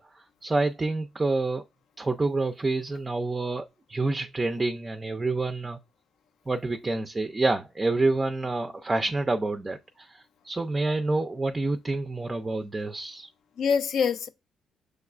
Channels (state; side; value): normal; both; correlation 0.92